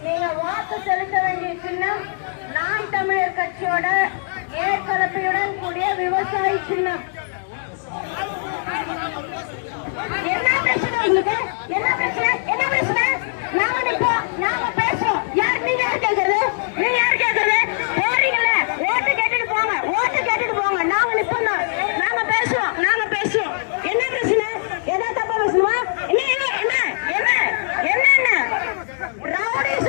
நீங்க வாக்கு செலுத்த வேண்டிய சின்னம் நாம் தமிழர் கட்சியோட ஏற்கலப்பையுடன் கூடிய விவசாயி சின்னம். என்ன பிரச்சனை உங்களுக்கு? என்ன பிரச்சனை? என்ன பிரச்சனை? நாம நிப்போம், நாம பேசுவோம். யார் நீங்க யார் கேட்கறது? நீங்க யார் கேட்கறது? போறீங்களே, ஓட்டு கேட்டுட்டு போங்க, ஓட்டு கேட்டுட்டு போங்க. நாங்க நிப்போம், நாம பேசுவோம், நாங்க பேசுவோம். என்ன பிரச்சனை? ஏதாவது தப்பா பேசுமா? என்ன என்ன என்ன என்ன என்ன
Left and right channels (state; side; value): silent; right; digital silence